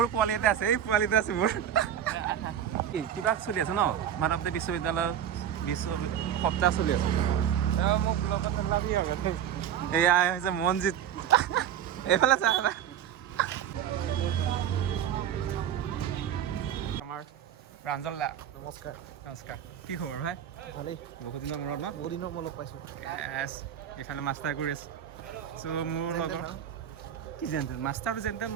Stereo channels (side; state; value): left; quieter; 9.8 dB